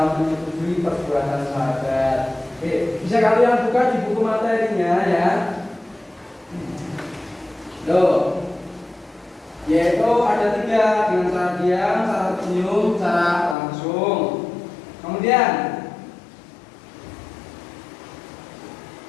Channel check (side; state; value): right; drops out; at 13.6 s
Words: menyetujui perbuatan sahabat. Oke, bisa kalian buka di buku materinya ya. Loh, yaitu ada 3 dengan cara diam, cara tersenyum, cara langsung. langsung. Kemudian